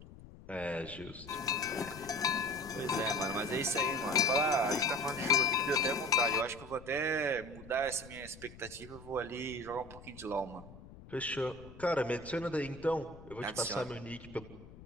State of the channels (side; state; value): left; noise; rumble, 17 dB below the sound